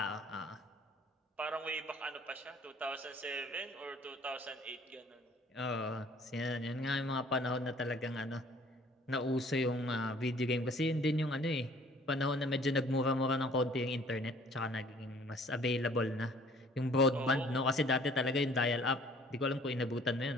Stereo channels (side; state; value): both; normal; correlation 0.55